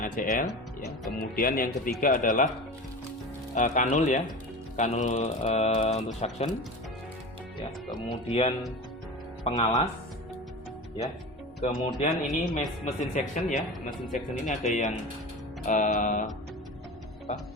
ya. Kemudian yang ketiga adalah kanul ya, kanul untuk suction ya. Kemudian pengalas ya. Kemudian ini mesin suction ya, mesin suction ini ada yang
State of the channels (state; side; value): normal; both; correlation 0.30